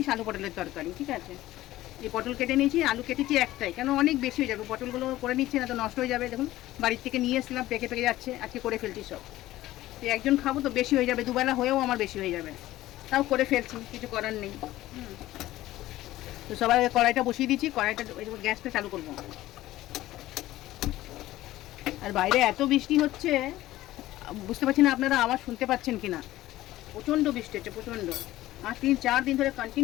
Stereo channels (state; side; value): quieter; right; 15.8 dB